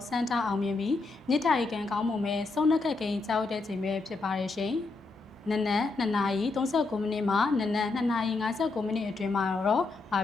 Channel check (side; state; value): right; quieter; 3.7 dB